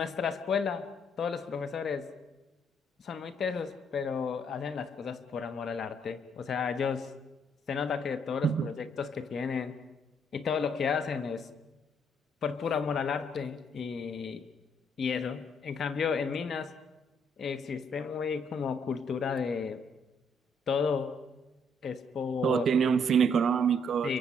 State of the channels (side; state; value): both; normal; correlation 0.69